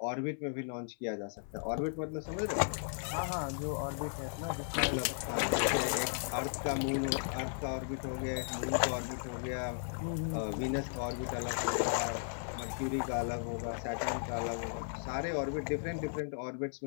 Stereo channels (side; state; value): right; silent; 54 dB below the other